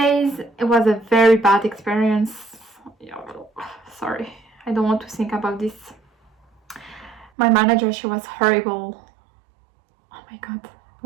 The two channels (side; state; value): left; drops out; at 7.3 s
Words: It was a very bad experience. Sorry, I don't want to think about this. My manager, she was horrible. Oh my god.